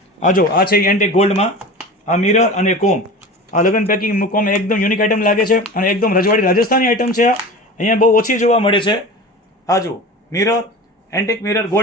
આ જો આ છે એન્ટિક ગોલ્ડમાં, આ મિરર અને કોમ. આ લગ્ન પેકિંગ મૂકવામાં એકદમ યુનિક આઈટમ લાગે છે, અને એકદમ રજવાડી રાજસ્થાની આઈટમ છે. આ અહીંયા બહુ ઓછી જોવા મળે છે. આ જો મિરર, એન્ટિક મિરર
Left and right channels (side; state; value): both; normal; correlation 0.34